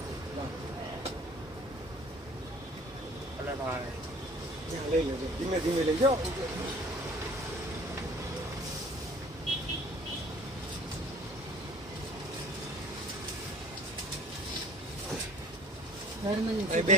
લઈ લેજો ધીમે ધીમે લઈ જાઓ બે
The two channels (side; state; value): both; normal; correlation 0.49